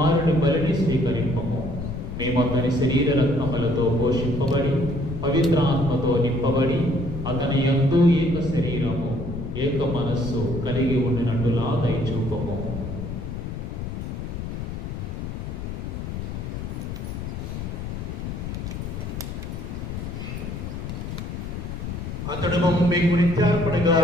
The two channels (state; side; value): noise; left; rumble, 6 dB below the sound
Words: బలిని స్వీకరింపము. మేము అతని శరీర రత్నములతో పోషింపబడి పవిత్ర ఆత్మతో నింపబడి అతని యందు ఏక శరీరము ఏక మనస్సు కలిగి ఉండినట్టులా దయచూపము. అతడు మమ్మ మీకు నిత్యార్పణగా